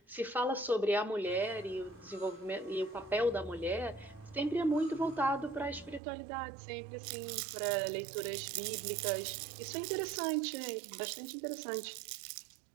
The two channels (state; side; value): drops out; left; at 6.0 s